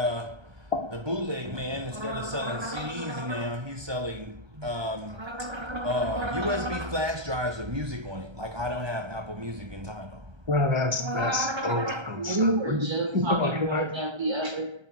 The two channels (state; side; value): late; left; 1.3 ms